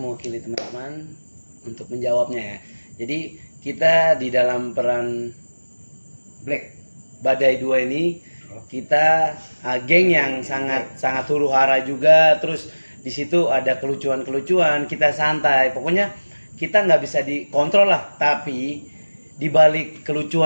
teman-teman untuk menjawabnya ya. Jadi kita di dalam peran Black. Badai 2 ini kita geng yang sangat huru hara juga. Terus di situ ada kelucuan-kelucuan, kita santai. Pokoknya kita nggak bisa dikontrol lah. Tapi di balik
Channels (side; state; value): both; inverted; correlation -1.00